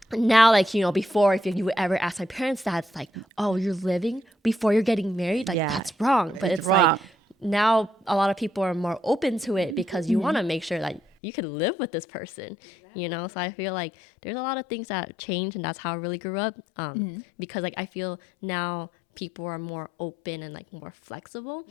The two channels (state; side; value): drops out; right; at 11.0 s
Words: now, like, before, if you would ever ask my parents that, it's like, oh, you're living before you're getting married? Like, that's wrong. But it's wrong. like, now a lot of people are more open to it because you want to make sure that you can live with this person. Exactly. So I feel like there's a lot of things that change, and that's how I really grew up. Because, like, I feel now people are more open and like more flexible.